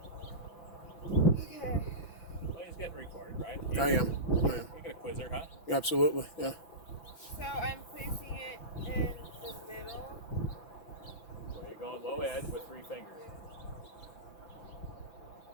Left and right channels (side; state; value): right; late; 5.9 ms